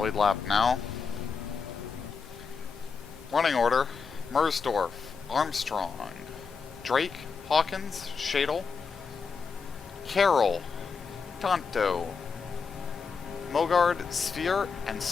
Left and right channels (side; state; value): right; quieter; 5.4 dB